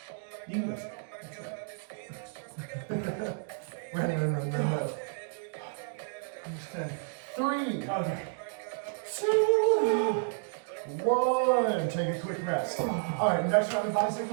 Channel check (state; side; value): silent; left; digital silence